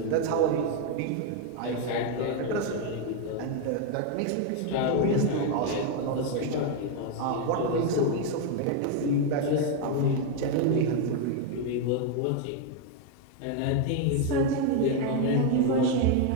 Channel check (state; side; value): different; both; correlation 0.01